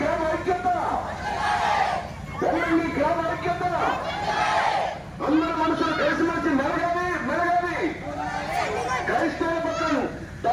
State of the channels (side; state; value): both; identical; correlation 1.00